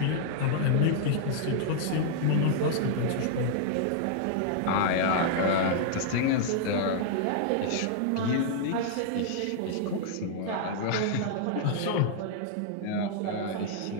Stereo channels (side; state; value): both; different; correlation -0.01